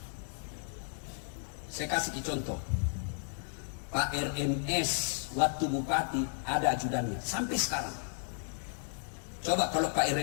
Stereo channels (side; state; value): right; silent; 55 dB below the other